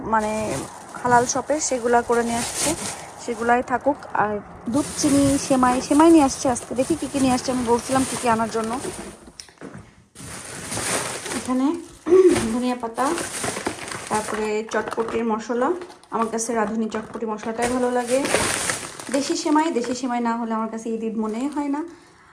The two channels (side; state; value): both; identical; correlation 1.00